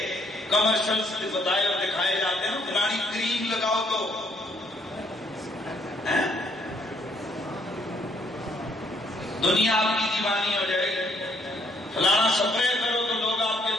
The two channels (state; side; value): normal; both; correlation 0.69